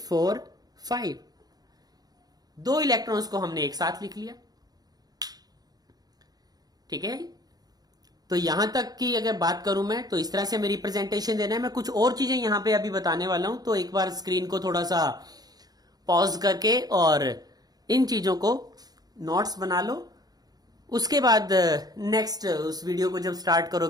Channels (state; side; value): late; left; 0.19 ms